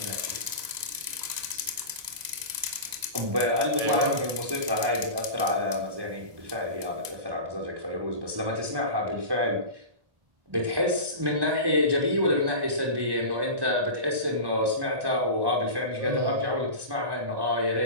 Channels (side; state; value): left; late; 1.0 ms